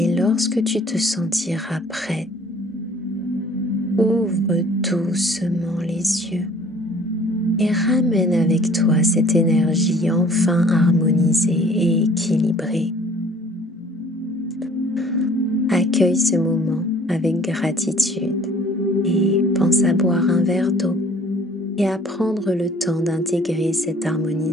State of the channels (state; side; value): normal; both; correlation 0.54